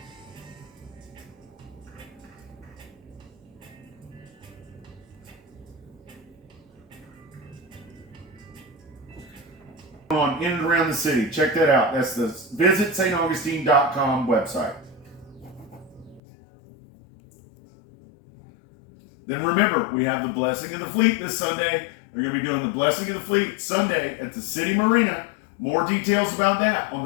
On in and around the city. Check that out. That's the visitstaugustine.com website. Then remember, we have the Blessing of the Fleet this Sunday. We're going to be doing the Blessing of the Fleet Sunday at the City Marina. More details about that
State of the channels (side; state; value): right; drops out; at 16.2 s